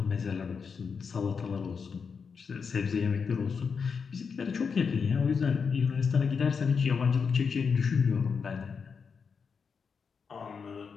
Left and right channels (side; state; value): right; quieter; 5.8 dB